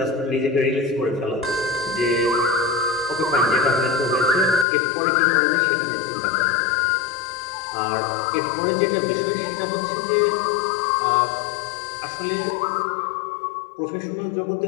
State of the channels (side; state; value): right; drops out; at 4.7 s